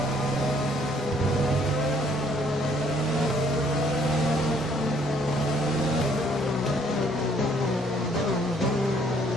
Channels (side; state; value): both; normal; correlation 0.64